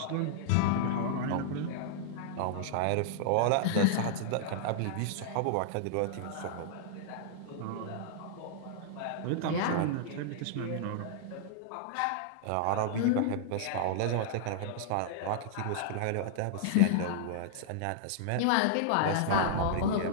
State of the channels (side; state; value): both; different; correlation -0.01